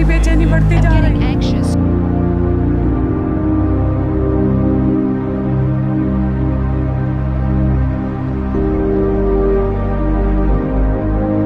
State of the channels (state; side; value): identical; both; correlation 1.00